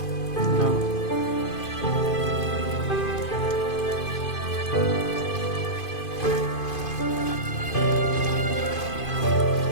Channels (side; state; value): right; late; 2.5 ms